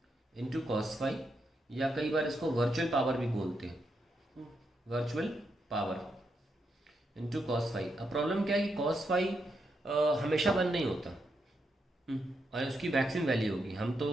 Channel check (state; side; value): normal; both; correlation 0.82